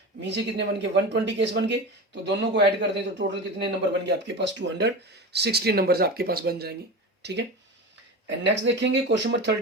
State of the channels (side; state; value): both; normal; correlation 0.27